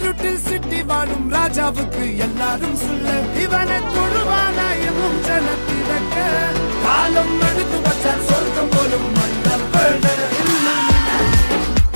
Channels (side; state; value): both; inverted; correlation -1.00